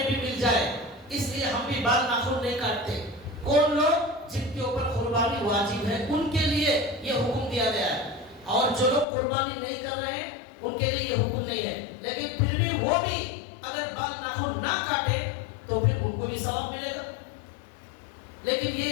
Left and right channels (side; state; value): right; drops out; at 9.1 s